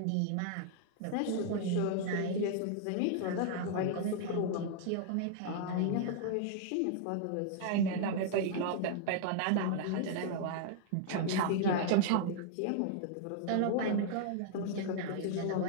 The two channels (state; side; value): different; both; correlation -0.01